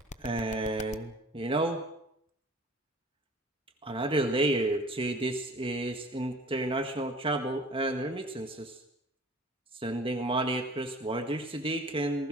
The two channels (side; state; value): both; normal; correlation 0.46